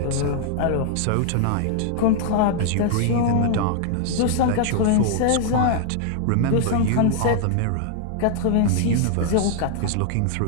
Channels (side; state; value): both; different; correlation 0.00